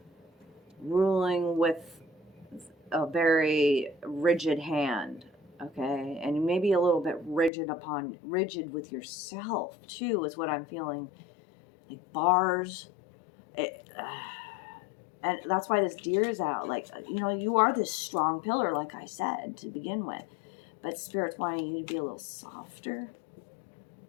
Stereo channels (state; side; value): drops out; right; at 7.5 s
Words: ruling with a very rigid hand. Okay, and maybe a little bit rigid with yourself too, is what I'm feeling. Like bars, and that's why this deer is out. Like, you know, you are this strong pillar, like I said to begin with, but Spirit's wanting you to be a little softer,